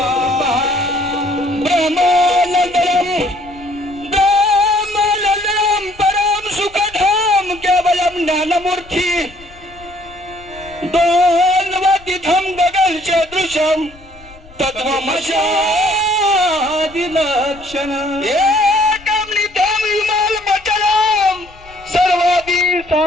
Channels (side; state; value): left; noise; rumble, 23 dB below the sound